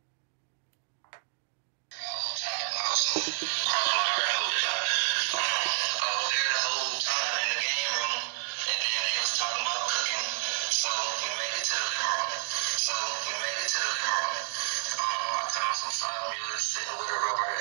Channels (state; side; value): silent; left; digital silence